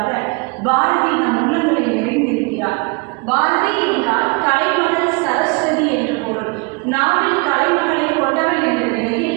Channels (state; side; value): quieter; left; 30.1 dB